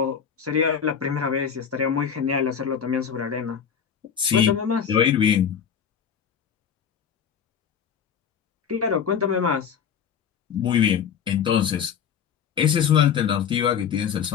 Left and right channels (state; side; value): quieter; right; 7.6 dB